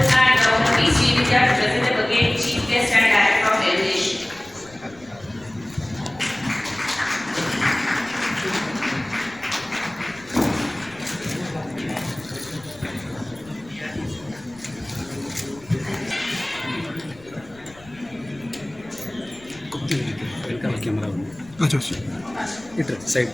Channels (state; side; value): noise; left; rumble, 23 dB below the sound